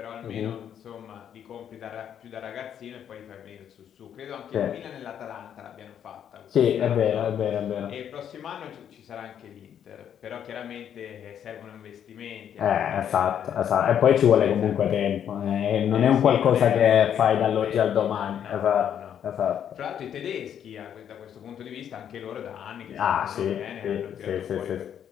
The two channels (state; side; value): quieter; right; 9.2 dB